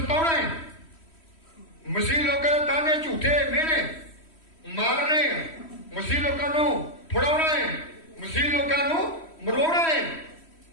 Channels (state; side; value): late; right; 3.1 ms